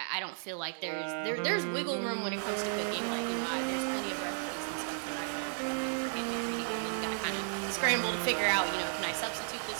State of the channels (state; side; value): silent; left; digital silence